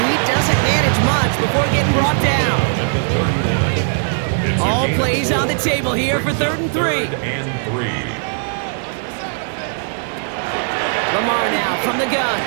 he doesn't manage much before getting brought down. All plays on the table here for 3rd and 3. Lamar now from the gun.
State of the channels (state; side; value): silent; left; digital silence